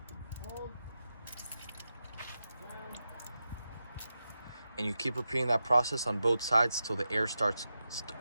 And you keep repeating that process on both sides till the air stops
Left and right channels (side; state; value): both; inverted; correlation -0.89